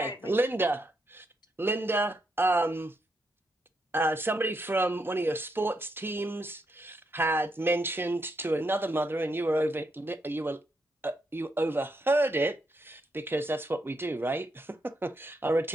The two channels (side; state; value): both; normal; correlation 0.79